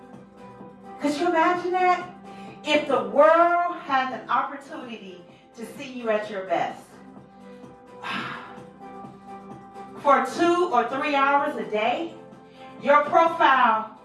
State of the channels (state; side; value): identical; both; correlation 1.00